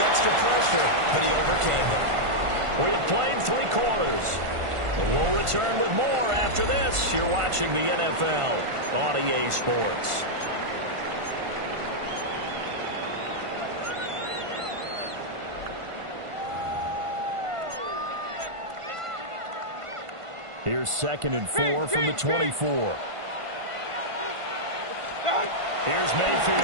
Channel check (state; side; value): late; left; 1.5 ms